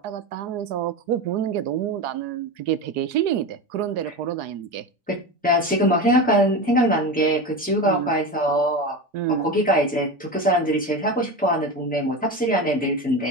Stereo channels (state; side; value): normal; both; correlation 0.23